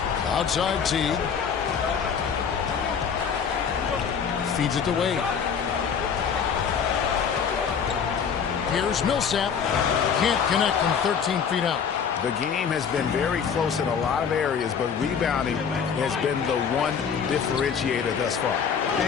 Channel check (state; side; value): quieter; right; 6.9 dB